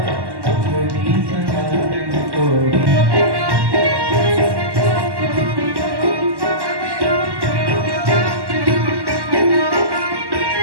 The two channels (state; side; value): late; left; 1.1 ms